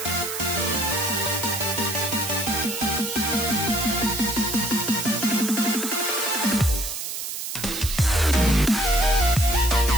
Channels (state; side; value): noise; right; hiss, 6 dB below the sound